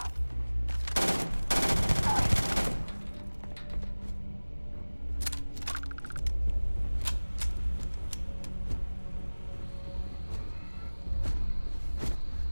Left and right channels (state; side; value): inverted; both; correlation -1.00